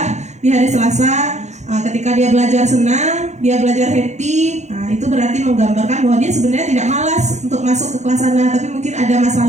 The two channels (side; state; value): left; late; 0.33 ms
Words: di hari Selasa, ketika dia belajar senang, dia belajar happy, nah itu berarti menggambarkan bahwa dia sebenarnya tidak malas untuk masuk ke kelas Ana, tapi mungkin ada